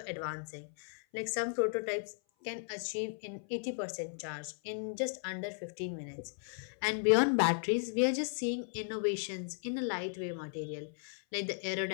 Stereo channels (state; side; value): silent; right; 54 dB below the other